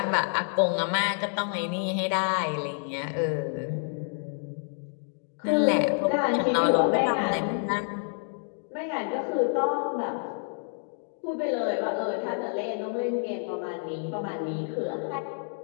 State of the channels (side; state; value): right; silent; 59 dB below the other